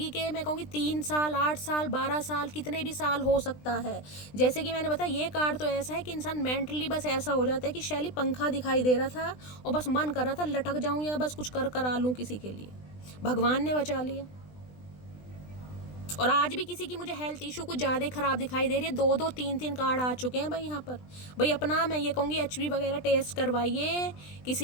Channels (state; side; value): late; right; 20 ms